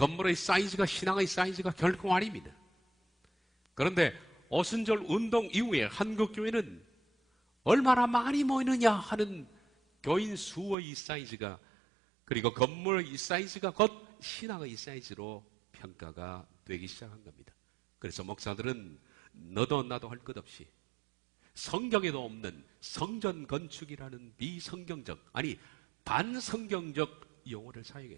사이즈가 신앙의 사이즈가 결코 아닙니다. 그런데 오순절 운동 이후에 한국교회는 얼마나 많이 모이느냐 하는 교인 수의 사이즈가 그리고 건물의 사이즈가 곧 신앙의 사이즈로 평가가 되기 시작한 겁니다. 그래서 목사들은 너도 나도 할 것 없이 성경에도 없는 성전 건축이라는 비성경적 아니 반성경적 용어를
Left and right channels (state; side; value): drops out; left; at 10.8 s